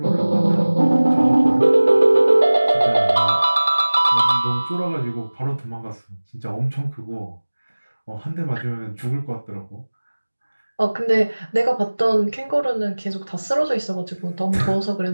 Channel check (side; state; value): both; inverted; correlation -1.00